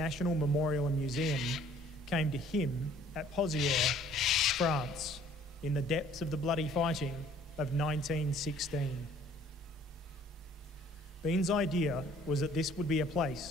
memorial and museum came to him at Pozières, France, in the depths of the bloody fighting of 1916. Bean's idea was that this would be a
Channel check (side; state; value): both; normal; correlation 0.57